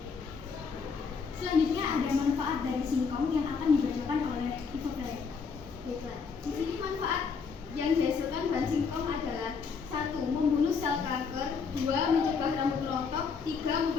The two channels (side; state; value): right; quieter; 5.4 dB